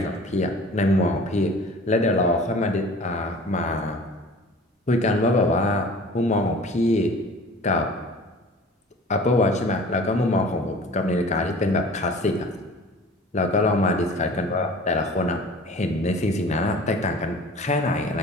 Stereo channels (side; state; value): both; normal; correlation 0.44